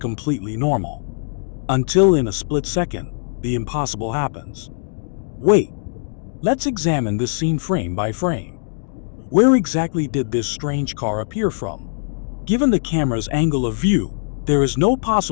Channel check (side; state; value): right; silent; 65 dB below the other